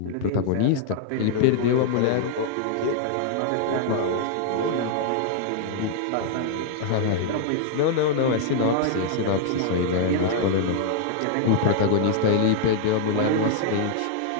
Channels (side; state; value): both; different; correlation -0.01